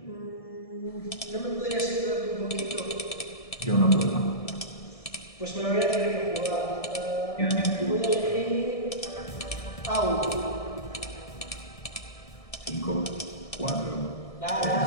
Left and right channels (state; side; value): late; right; 1.6 ms